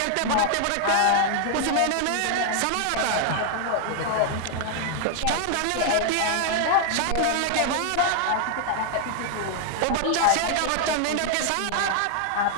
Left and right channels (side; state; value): both; different; correlation 0.00